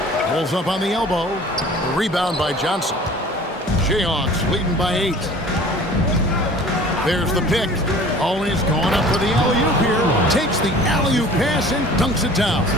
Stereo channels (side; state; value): both; normal; correlation 0.46